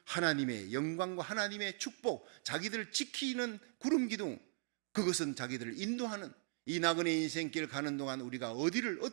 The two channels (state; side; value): silent; left; 51 dB below the other